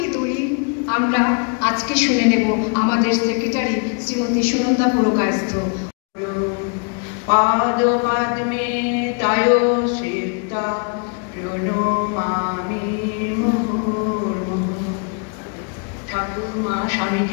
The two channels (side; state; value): right; quieter; 38.2 dB